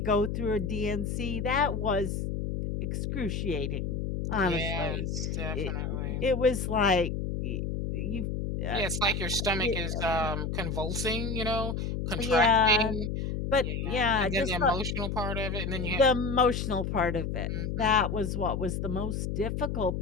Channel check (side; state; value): left; noise; hum, 2 dB below the sound